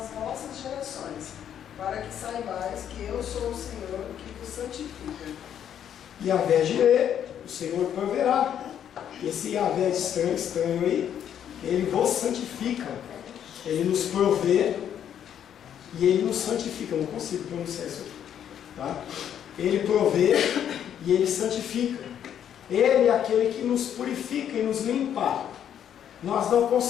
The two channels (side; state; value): right; quieter; 9.5 dB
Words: vossas gerações, para que saibais que eu sou o Senhor que vos santifica. Yahvé Jireh, o Senhor proverá. Esse Yahvé estranho aí, ele vos santifica, ele nos provê e ele nos santifica. Eu não consigo pronunciar isso aqui, tá? Ele provê e ele santifica. Ele é aquele que nos purifica e nos limpa. Nós não